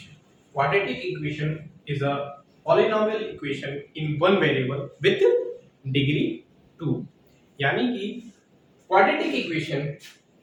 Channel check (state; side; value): identical; both; correlation 1.00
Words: Quadratic equation is a polynomial equation in one variable with degree 2. यानी कि quadratic equation